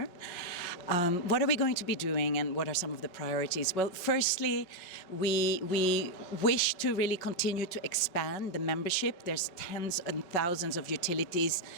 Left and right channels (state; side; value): late; right; 5.5 ms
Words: What are we going to be doing, and what are some of the priorities? Well, firstly, we wish to really continue to expand the membership. There's tens and thousands of utilities